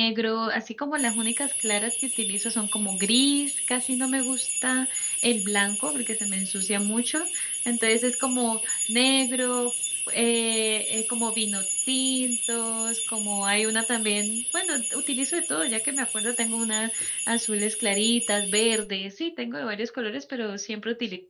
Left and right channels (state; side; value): identical; both; correlation 1.00